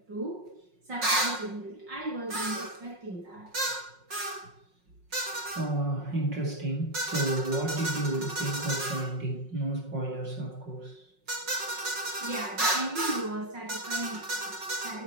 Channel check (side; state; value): left; late; 5.5 ms